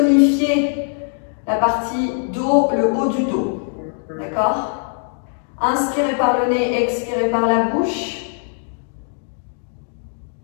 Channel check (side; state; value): right; silent; digital silence